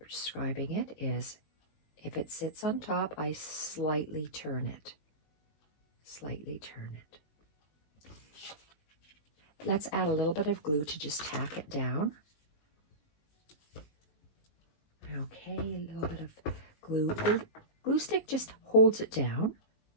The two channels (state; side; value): late; right; 19 ms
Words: it is, if it sits on top, I slightly turn it. Slightly turn it. Let's add a little bit of glue to just tack it down. Okay, a little bit of glue. The glue stick just holds it down.